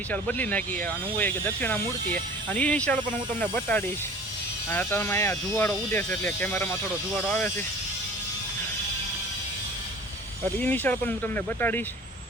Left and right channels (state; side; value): normal; both; correlation 0.44